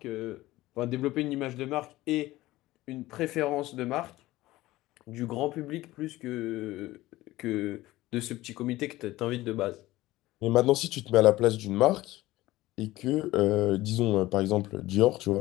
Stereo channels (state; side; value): quieter; right; 17.4 dB